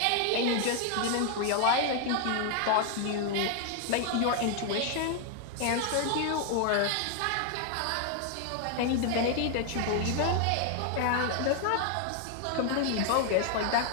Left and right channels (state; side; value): different; both; correlation 0.00